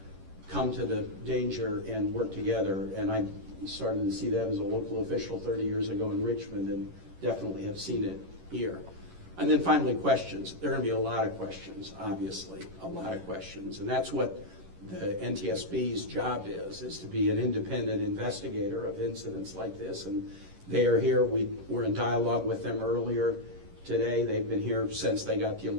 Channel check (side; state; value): left; late; 11 ms